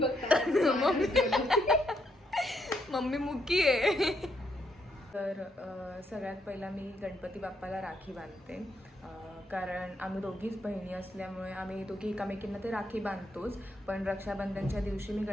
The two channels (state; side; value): normal; both; correlation 0.76